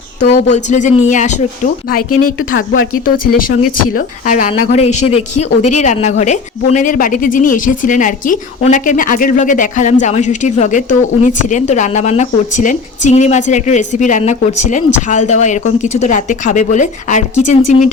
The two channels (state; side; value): quieter; right; 4.6 dB